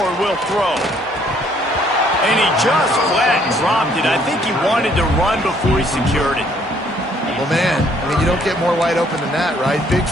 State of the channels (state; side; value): normal; both; correlation 0.64